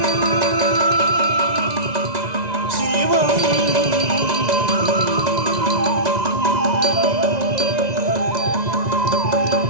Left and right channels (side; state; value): left; late; 2.0 ms